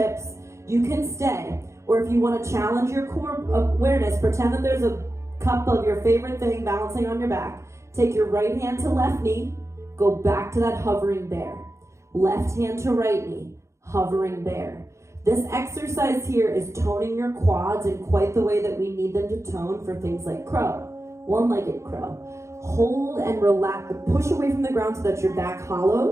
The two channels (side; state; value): left; late; 0.14 ms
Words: You can stay. Or if you want to challenge your core awareness, pretend that there's a cup of your favorite thing balancing on your back. Take your right hand to left knee. Go back to that hovering bear. Left hand to right knee. Hovering bear. This exercise here is toning your quads in quite the way that we need them to tone for things like crow, one-legged crow. Hold and relax, push away from the ground so that your back